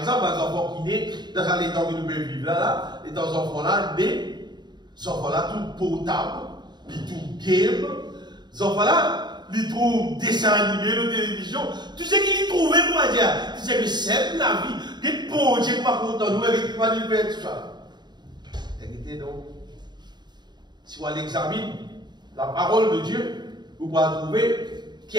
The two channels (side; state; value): left; late; 0.21 ms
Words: les enfants qui naissent, dans les temps que nous pouvons vivre là, les enfants-là, nés, les enfants-là, tout potable, ils tout game, les enfants-là, ils trouvent dessin animé, la télévision, tout ce qu'ils trouvaient, pour dire, c'est que c'est la vie. Des bons Dieu qui va content nous, et qui va nous faire tout ça. Écoutez donc, si on l'examine, la parole de Dieu, vous pouvez trouver qui